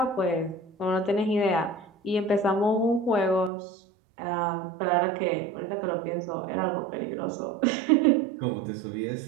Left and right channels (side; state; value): left; drops out; at 3.5 s